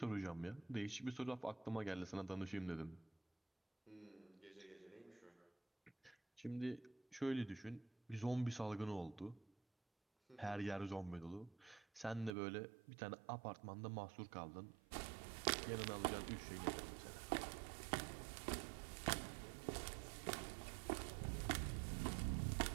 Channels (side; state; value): left; drops out; at 12.4 s